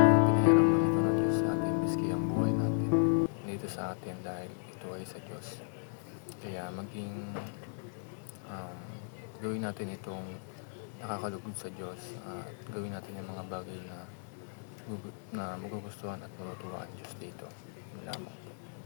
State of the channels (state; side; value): silent; right; 55 dB below the other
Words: lang ito ng Diyos sa atin, miski ang buhay natin dito sa atin, dahil ito ay sa Diyos. Kaya gawin natin itong nakakalugod sa Diyos, at gawin natin yung mga bagay na magugustuhan at matutuwa ang Diyos dito. Yun lamang.